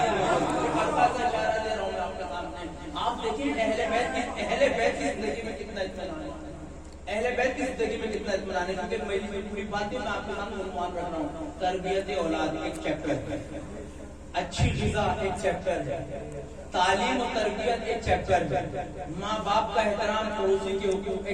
ہلکا سا اشارہ دے رہا ہوں آپ کے سامنے۔ آپ دیکھیں اہل بیت کی زندگی میں کتنا اطمینان ہے، اہل بیت کی زندگی میں کتنا اطمینان ہے، کیونکہ میری پوری باتیں میں آپ کے سامنے عنوان رکھ رہا ہوں۔ تربیت اولاد ایک چیپٹر ہے، اچھی غذا ایک چیپٹر ہے، تعلیم و تربیت ایک چیپٹر ہے، ماں باپ کا احترام، پڑوسی کے حقوق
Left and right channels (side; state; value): both; identical; correlation 1.00